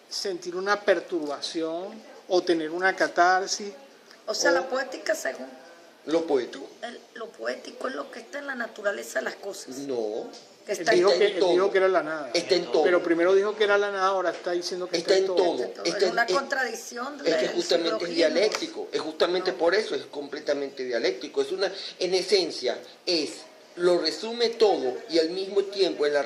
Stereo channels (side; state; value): both; identical; correlation 1.00